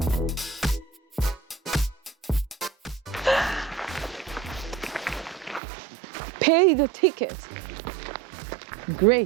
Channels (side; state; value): left; drops out; at 5.6 s